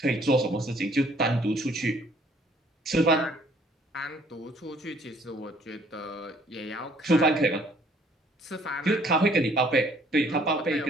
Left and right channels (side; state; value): both; normal; correlation 0.60